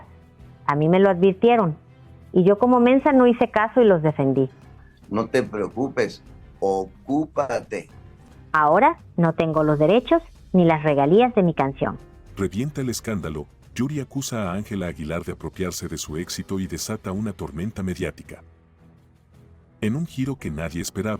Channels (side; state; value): both; identical; correlation 1.00